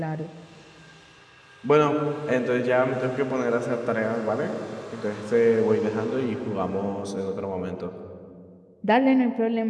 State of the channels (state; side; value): identical; both; correlation 1.00